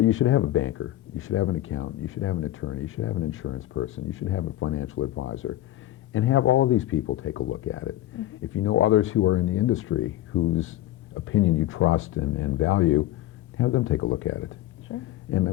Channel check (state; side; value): quieter; right; 14.5 dB